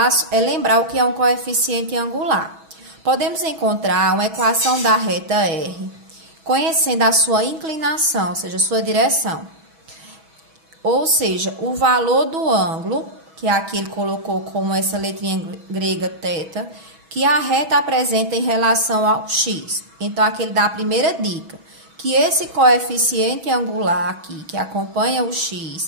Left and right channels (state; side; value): late; left; 6.2 ms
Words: é lembrar o que é um coeficiente angular. Podemos encontrar uma equação da reta R, conhecendo a sua inclinação, ou seja, a sua direção. Ou seja, o valor do ângulo, que aqui ele colocou como essa letrinha grega θ, que a reta apresenta em relação ao x. Então, aqui ele dá a primeira dica, que esse coeficiente angular aqui, que acompanha o